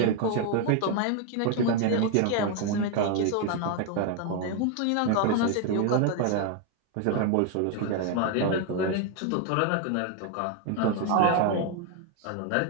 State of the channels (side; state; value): both; different; correlation 0.01